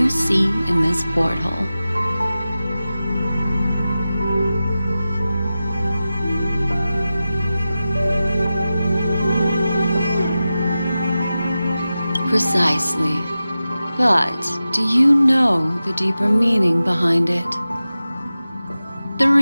see in this porthole. Precisely. But do you know the deeper meaning behind it? The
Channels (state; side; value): inverted; both; correlation -0.94